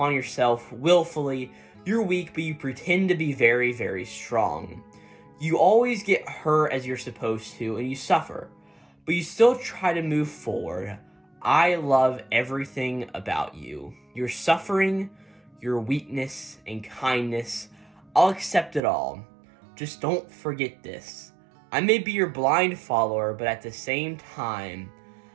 yourself willfully. You're weak, but you pretend to be very, very strong. You always get hurt as you're supposed to, and you suffer, but you still try to move forward. I love everything about you. Your suffering, your weakness, and kindness. I'll accept it all. Just don't forget this. I may be your blind follower, but at the same time,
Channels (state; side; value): drops out; left; at 18.8 s